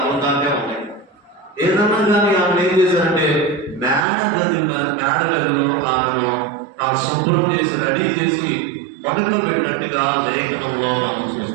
అమృతాంటే ఉన్నాయి. ఏదన్నా కానీ ఆమె ఏం చేశారంటే మేడ గదిలో ఆమెను శుభ్రం చేసి రెడీ చేసి పడుకోబెట్టినట్టుగా లేఖనంలో మనం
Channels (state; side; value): drops out; left; at 4.0 s